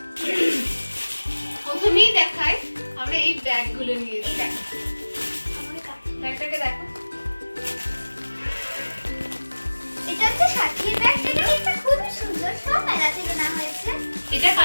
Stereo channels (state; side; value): inverted; both; correlation -1.00